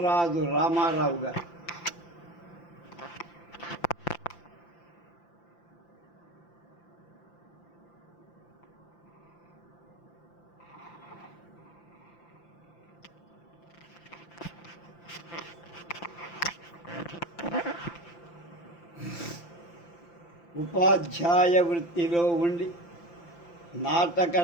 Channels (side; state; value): right; late; 5.8 ms